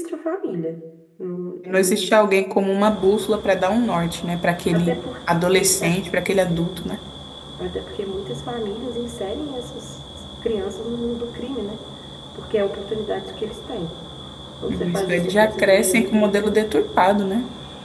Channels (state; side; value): identical; both; correlation 1.00